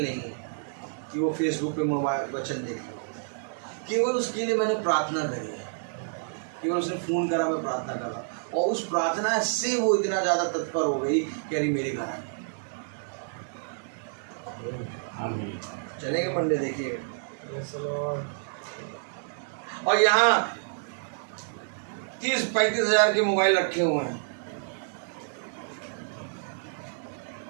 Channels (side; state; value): left; silent; digital silence